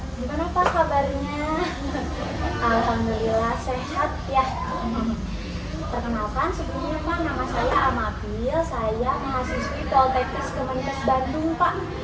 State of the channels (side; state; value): both; identical; correlation 1.00